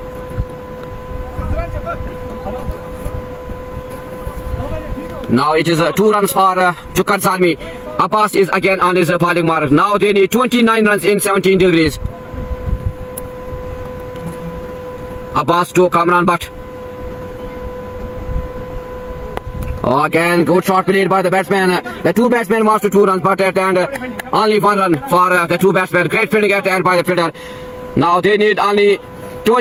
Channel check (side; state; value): both; identical; correlation 1.00